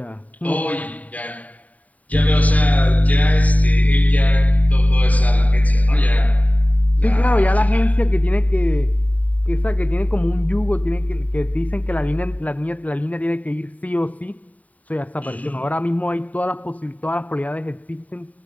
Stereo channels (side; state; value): right; late; 0.071 ms